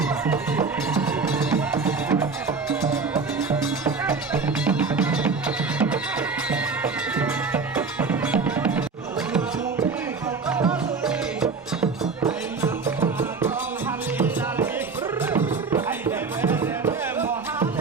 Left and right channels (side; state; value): left; quieter; 4.6 dB